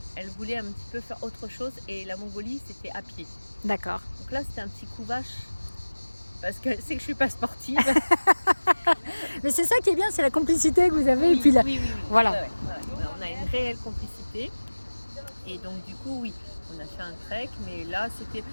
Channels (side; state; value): both; inverted; correlation -1.00